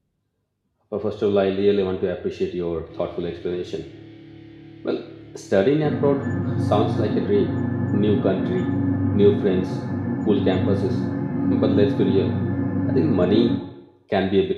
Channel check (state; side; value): identical; both; correlation 1.00